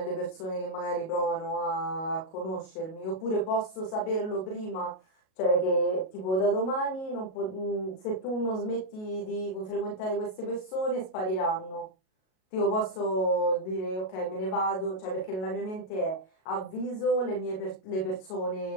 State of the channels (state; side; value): late; right; 37 ms